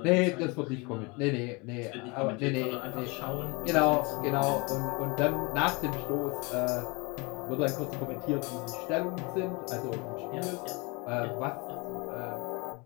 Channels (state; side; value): quieter; right; 28.2 dB